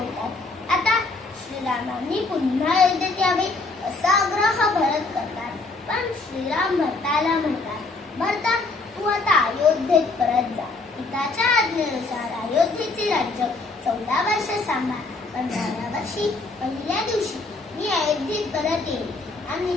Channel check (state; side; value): quieter; right; 3.5 dB